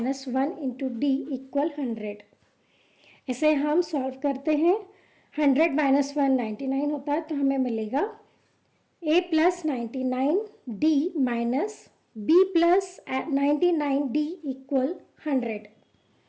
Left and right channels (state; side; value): identical; both; correlation 1.00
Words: 1 into D equal 100। इसे हम सॉल्व करते हैं। 100 माइनस 1 99 होता है, तो हमें मिलेगा a plus 99 D minus b plus 99 D equal 100।